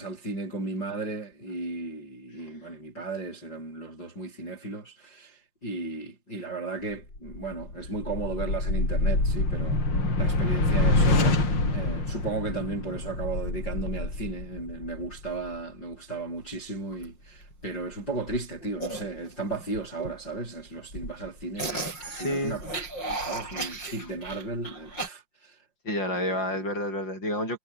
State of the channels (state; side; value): late; right; 5.7 ms